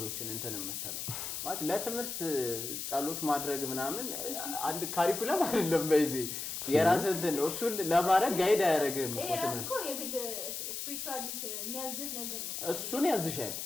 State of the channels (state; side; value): noise; left; hiss, 5 dB below the sound